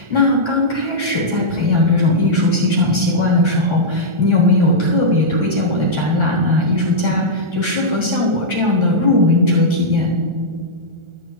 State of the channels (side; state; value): left; late; 1.4 ms